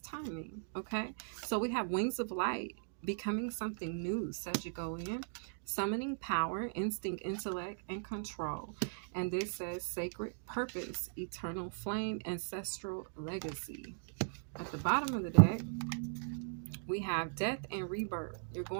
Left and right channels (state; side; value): silent; left; digital silence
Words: Okay, so we have wings of light, becoming something new, Sagittarian, summoning power, instinct, intellect, and control. And this says sacred purpose, eternal flame, ancestral legacy. At the bottom of the deck, we have death and rebirth. You're